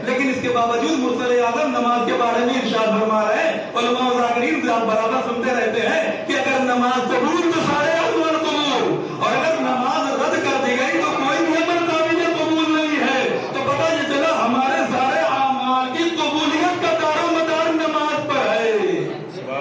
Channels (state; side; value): identical; both; correlation 1.00